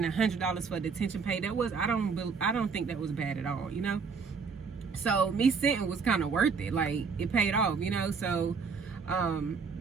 $100 for detention pay, that was, I don't think that was bad at all, you know. So me sitting was kind of worth it. Like, it paid off, you know. So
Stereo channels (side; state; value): left; quieter; 5.3 dB